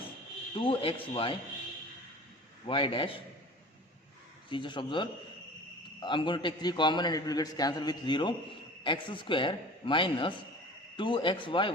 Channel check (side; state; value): both; normal; correlation 0.40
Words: 2xy y dash. See, just observe, I'm going to take 3 common and it will get cancelled with 0. X square minus 2xy